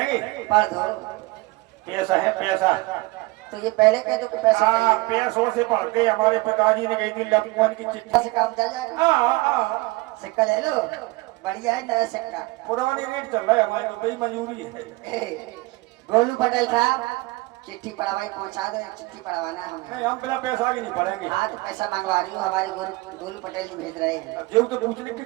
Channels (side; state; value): left; quieter; 22.3 dB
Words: पढ़ दो। पैसा है पैसा। तो ये पहले कह दो कि पैसा चाहिए। पैसों से पढ़ते। हमारे पिताजी ने कही थी लपमन की चिट्ठी से काम चल जाएगा। सिक्का ले लो, बढ़िया है नया सिक्का। पुरानी रेट चल रहा है हमारे तो, बड़ी मंजूरी है। गोलू पटेल साहब, चिट्ठी पढ़वाई पहुंचा दो। चिट्ठी पढ़वाना हमें। नहीं, हम बिना पैसा के नहीं पढ़ेंगे। हाँ तो पैसा मंगवा रही हूँ, हमारे गोलू पटेल जी भेज रहे हैं। जो तो पूछने